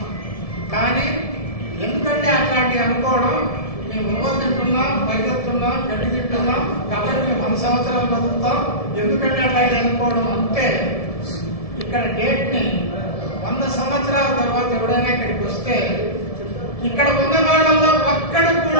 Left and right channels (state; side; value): late; right; 1.7 ms